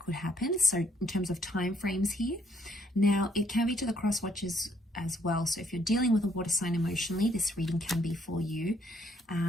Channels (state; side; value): normal; both; correlation 0.69